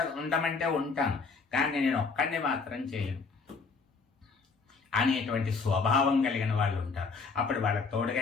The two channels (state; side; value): quieter; right; 4.7 dB